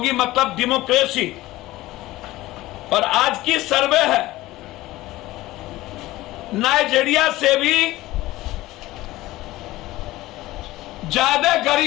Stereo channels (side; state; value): right; quieter; 17.5 dB